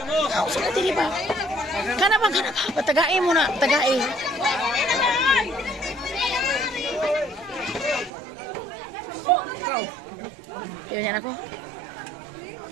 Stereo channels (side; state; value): left; drops out; at 8.1 s